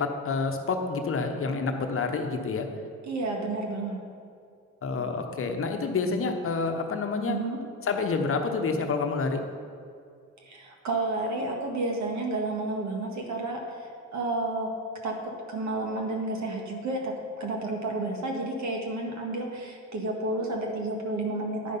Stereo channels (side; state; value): both; normal; correlation 0.12